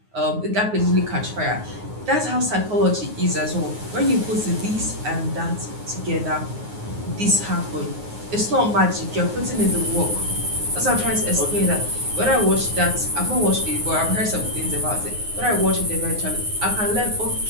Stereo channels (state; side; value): late; left; 9.5 ms